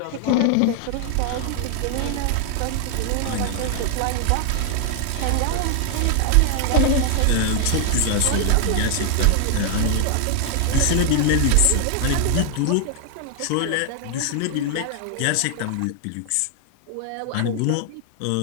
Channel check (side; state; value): both; different; correlation 0.00